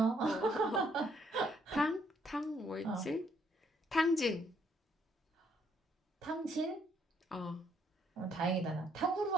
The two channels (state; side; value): normal; both; correlation 0.70